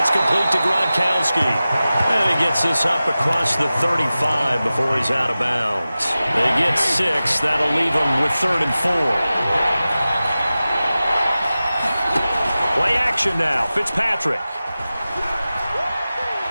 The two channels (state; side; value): inverted; both; correlation -0.95